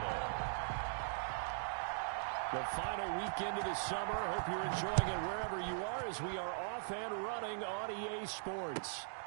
The final weekend of the summer. Hope you're enjoying it wherever you are as we are off and running on EA Sports.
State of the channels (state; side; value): silent; left; digital silence